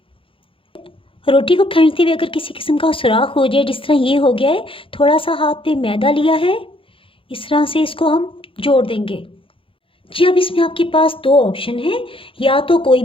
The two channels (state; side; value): late; right; 0.26 ms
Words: रोटी को खींचते हुए अगर किसी किस्म का सुराख हो जाए, जिस तरह ये हो गया है, थोड़ा सा हाथ पे मैदा लिया है, इस तरह से इसको हम जोड़ देंगे। जी, अब इसमें आपके पास 2 ऑप्शन हैं। या तो कोई